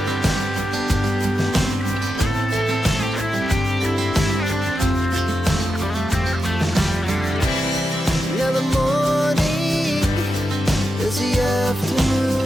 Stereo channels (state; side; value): normal; both; correlation 0.88